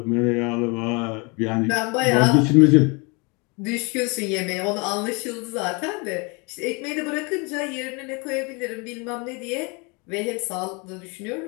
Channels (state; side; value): quieter; right; 30.1 dB